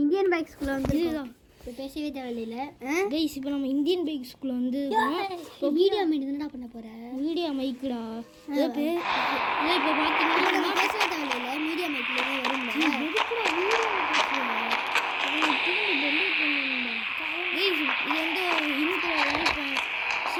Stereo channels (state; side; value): identical; both; correlation 1.00